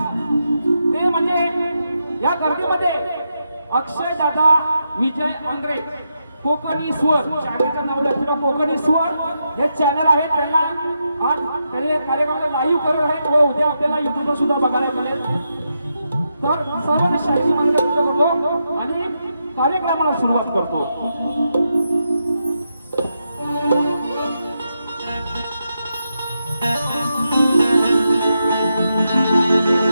ते म्हणजे या गर्दीमध्ये अक्षय दादा विजय अंग्रे कोकणी स्वर चॅनलचं नाव लक्षात कोकणी स्वर हे चॅनल आहे त्यांना आज ते कार्यक्रमाला लाईव्ह करत आहेत व उद्या आपल्याला युट्यूबवर सुद्धा बघायला मिळेल. तर सर्वांना शाहिरी महाराजा करतो आणि कार्यक्रमाला सुरुवात करतो.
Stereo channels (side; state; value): both; inverted; correlation -0.84